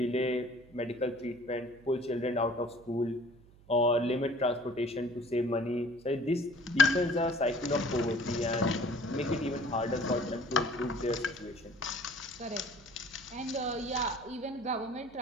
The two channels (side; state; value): right; noise; hum, 24 dB below the sound